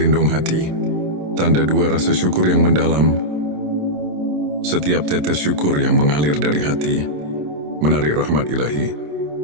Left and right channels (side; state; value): left; late; 27 ms